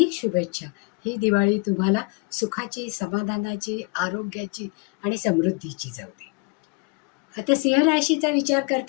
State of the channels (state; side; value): quieter; right; 32.4 dB